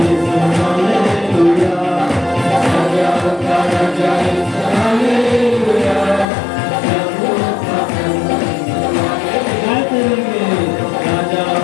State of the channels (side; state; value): right; drops out; at 6.2 s